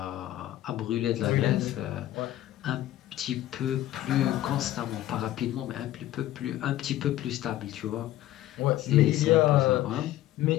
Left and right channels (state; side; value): quieter; right; 14.2 dB